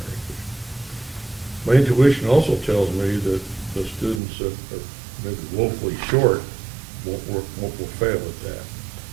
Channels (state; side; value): drops out; left; at 4.2 s